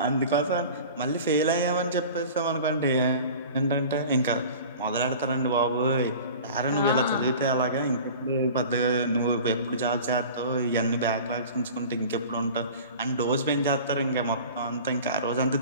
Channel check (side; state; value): both; inverted; correlation -0.40